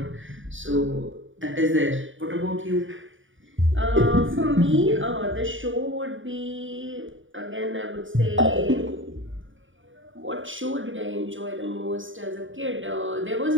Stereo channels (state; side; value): late; left; 0.57 ms